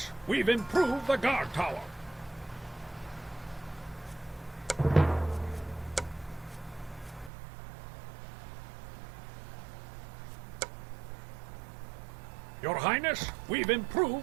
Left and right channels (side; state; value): left; drops out; at 7.3 s